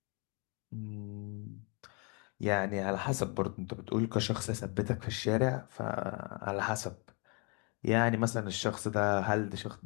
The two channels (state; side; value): quieter; right; 33.0 dB